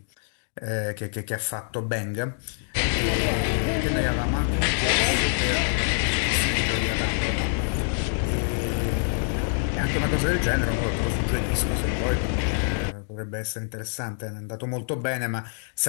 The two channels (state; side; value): silent; right; digital silence